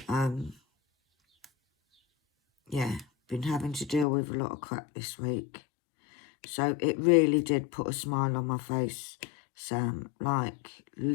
Yeah, been having to deal with a lot of crap this week. So it really did put a smile on my face, Sam. Like,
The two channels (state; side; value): drops out; right; at 4.0 s